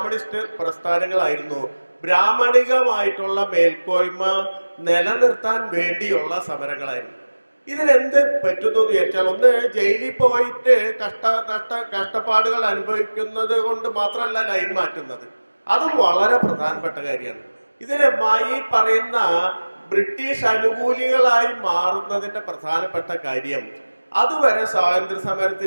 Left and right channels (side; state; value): both; inverted; correlation -1.00